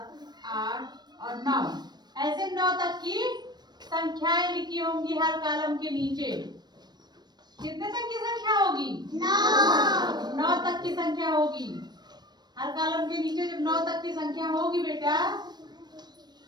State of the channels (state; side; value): late; left; 0.20 ms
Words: 8 और 9, ऐसे 9 तक की संख्याएं लिखी होंगी हर कॉलम के नीचे। कितने तक की संख्या होगी? 9 तक की संख्या होगी हर कॉलम के नीचे। जब 9 तक की संख्या होगी बेटा,